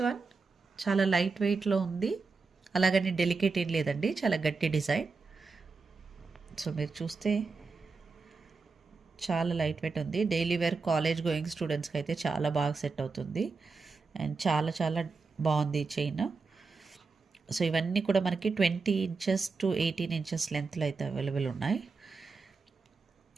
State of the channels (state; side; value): quieter; left; 4.4 dB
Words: వన్ చాలా లైట్ వెయిట్లో ఉంది, అలాగని డెలికేట్ ఏం లేదండి, చాలా గట్టి డిజైన్. సో మీరు చూస్తే చాలా లైట్ వెయిట్ ఉంది. డైలీ వేర్ కాలేజ్ గోయింగ్ స్టూడెంట్స్కి అయితే చాలా బాగా సెట్ అవుతుంది. అండ్ చాలా చాలా బాగుంది ఈ చైన్. సో ఇవన్నీ కూడా మనకి 20 ఇంచెస్ టు 18 ఇంచెస్ లెంత్లో అయితే అవైలబుల్ ఉన్నాయి.